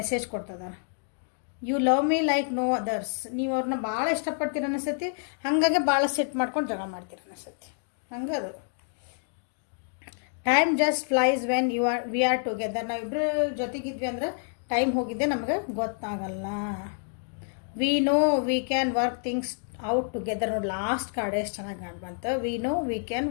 ಕೊಡ್ತದಾರೆ. You love me like no others. ನೀವು ಅವ್ರನ್ನ ಭಾಳ ಇಷ್ಟಪಡ್ತೀರ ಅನಿಸ್ತೈತಿ, ಹಾಗಾಗಿ ಭಾಳ ಸೆಟ್ ಮಾಡ್ಕೊಂಡು ಜಗಳ ಮಾಡ್ತೀರ ಅನಿಸ್ತೈತಿ. ಹಂಗೆ ಅದು time just flies when we are together. ನಾವಿಬ್ಬರು ಜೊತೆಗಿದ್ವಿ ಅಂದ್ರೆ ಟೈಮ್ ಹೋಗಿದ್ದೆ ನಮಗೆ ಗೊತ್ತಾಗಲ್ಲ. We know we can work things out together. ನೋಡಿ ಲಾಸ್ಟ್ ಕಾರ್ಡ್ ಎಷ್ಟು ಚೆನ್ನಾಗಿ ಕಾಣ್ ಬಂತು. We know we can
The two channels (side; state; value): right; silent; digital silence